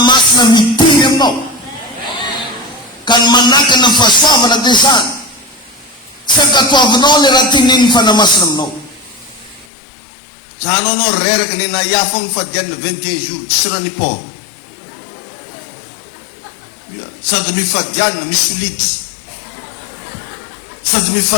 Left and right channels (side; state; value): right; drops out; at 9.7 s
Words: mitiry aminao. Ka ny manakana ny fahasoavana dia zany. Tsy ankatoavinao le raha teneniny fanamasina aminao. Janao anao reraka ny nahiafo ny fadianina 21 jours, tsy raha ny port. Sady mifadianina misy lity. Sady